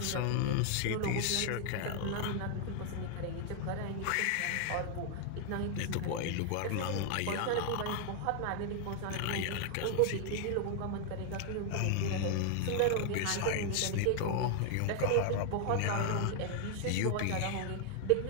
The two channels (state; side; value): different; both; correlation 0.00